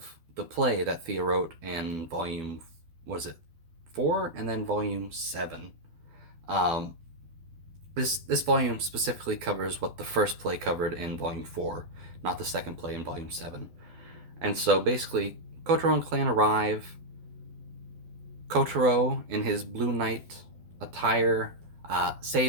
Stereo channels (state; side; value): late; left; 12 ms